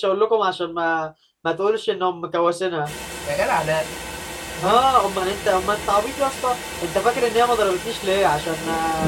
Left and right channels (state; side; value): identical; both; correlation 1.00